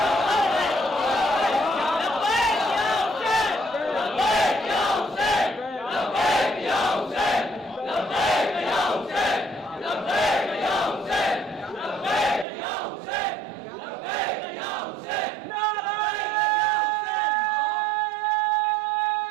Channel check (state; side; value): drops out; left; at 12.5 s